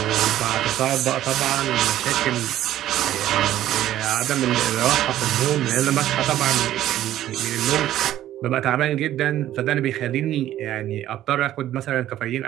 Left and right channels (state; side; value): quieter; left; 12.9 dB